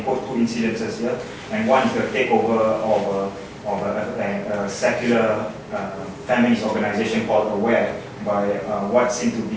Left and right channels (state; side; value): identical; both; correlation 1.00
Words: quote 2 incidences here. And one is the takeover of a secular feminist organization called AWARE by what seemed to